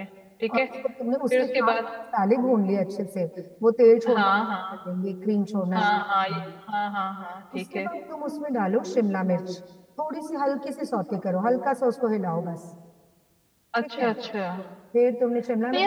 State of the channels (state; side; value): identical; both; correlation 1.00